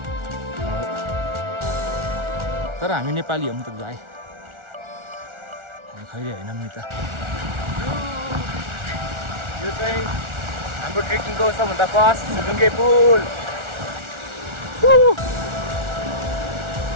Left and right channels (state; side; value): late; left; 1.4 ms